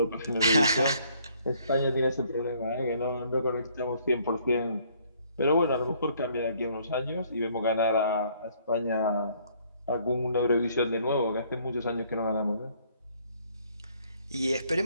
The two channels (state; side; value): inverted; both; correlation -0.63